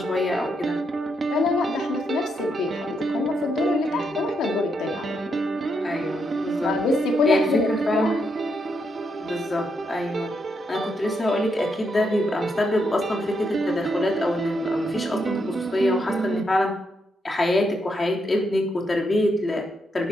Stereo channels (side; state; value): both; normal; correlation 0.80